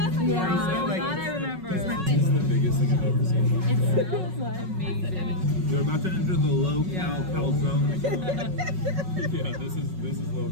yeah, like, that I remember. This is the biggest thing I've ever seen. It smells amazing. You're about to enter the low-cal calzone. Yeah, this is low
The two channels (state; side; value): late; left; 5.4 ms